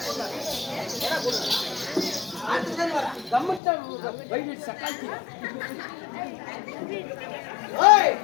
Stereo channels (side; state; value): right; drops out; at 3.6 s